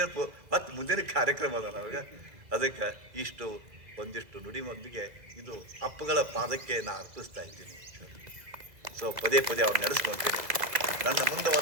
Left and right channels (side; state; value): left; late; 2.0 ms